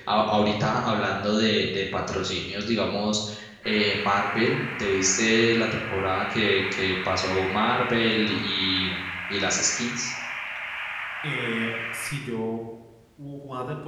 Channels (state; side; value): identical; both; correlation 1.00